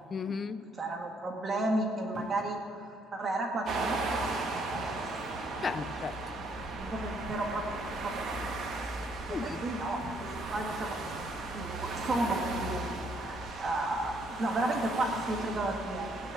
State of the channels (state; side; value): normal; both; correlation 0.69